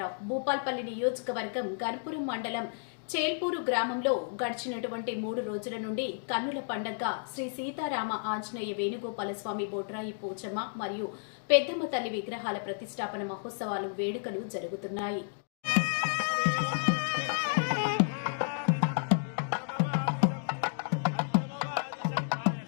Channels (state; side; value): silent; right; digital silence